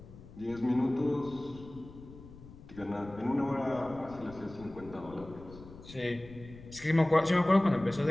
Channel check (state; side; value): noise; left; rumble, 18 dB below the sound